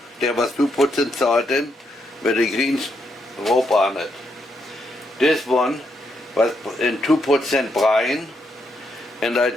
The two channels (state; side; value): normal; both; correlation 0.78